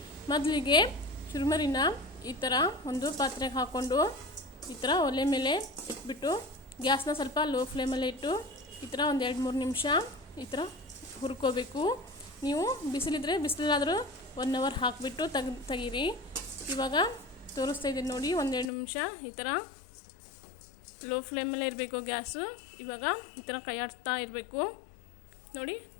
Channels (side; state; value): right; drops out; at 18.7 s